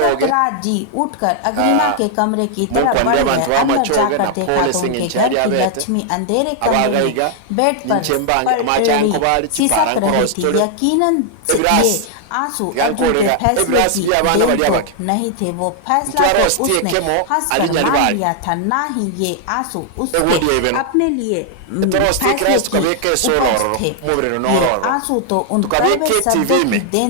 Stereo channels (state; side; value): different; both; correlation 0.00